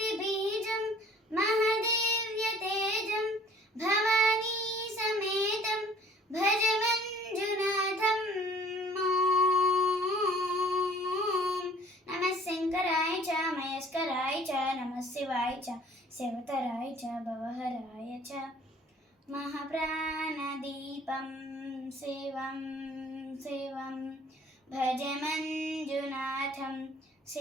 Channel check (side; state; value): both; normal; correlation 0.54